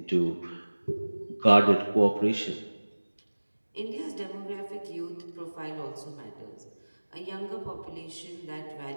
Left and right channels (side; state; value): both; inverted; correlation -1.00